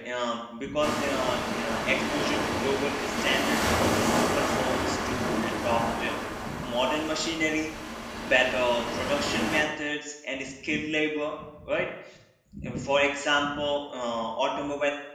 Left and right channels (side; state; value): both; identical; correlation 1.00